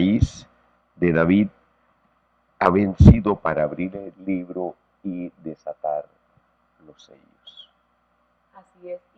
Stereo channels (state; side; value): identical; both; correlation 1.00